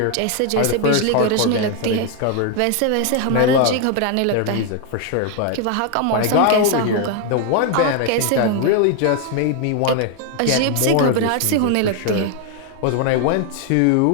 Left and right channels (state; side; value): different; both; correlation 0.01